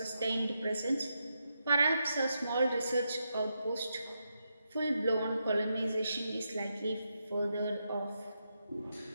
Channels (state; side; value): inverted; both; correlation -0.84